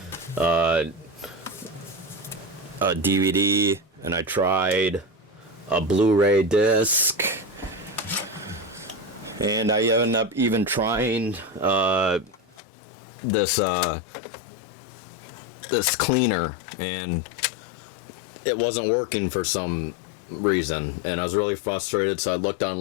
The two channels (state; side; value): drops out; right; at 12.6 s